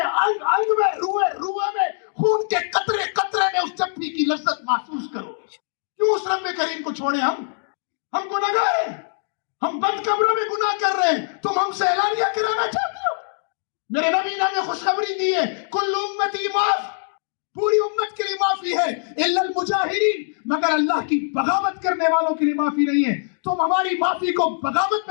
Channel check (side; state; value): right; silent; digital silence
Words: انگ انگ میں، روئے روئے میں، خون کے قطرے قطرے میں اس چپڑی کی لذت محسوس کرو۔ کیوں اس رب کریم کو چھوڑے؟ ہم گناہگار ہیں، ہم بند کمروں میں گناہ کر رہے ہیں، تم ہم سے اعلانیہ کرانا چاہتے ہو؟ میرے نبی نے ہمیں خوشخبری دی ہے، کل امتی معاف، پوری امت کے لیے معافی ہے، الا المجاہرین، مگر اللہ کی بغاوت کرنے والوں کے لیے معافی نہیں ہے۔ تم ہماری معافی کو بغاوت